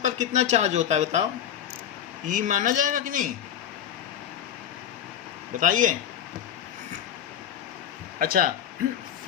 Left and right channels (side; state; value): right; quieter; 10.0 dB